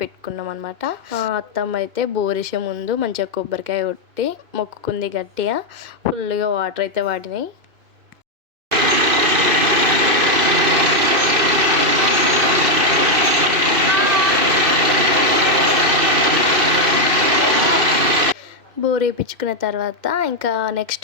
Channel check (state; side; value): late; left; 2.6 ms